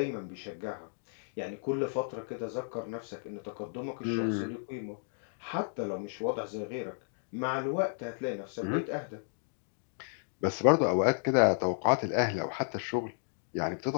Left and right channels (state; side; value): silent; right; digital silence